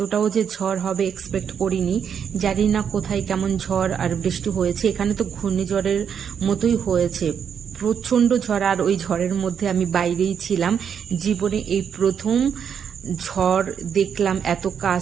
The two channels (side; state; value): left; quieter; 7.7 dB